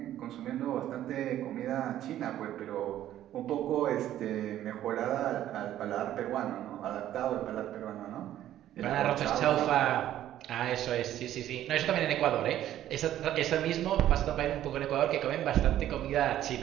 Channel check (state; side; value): quieter; left; 12.4 dB